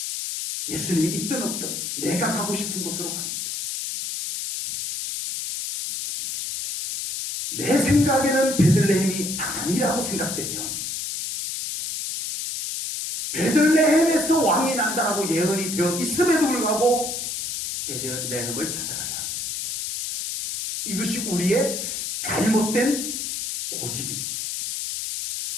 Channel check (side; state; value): left; noise; hiss, 4 dB below the sound